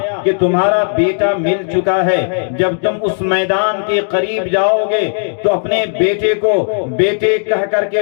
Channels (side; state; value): right; silent; digital silence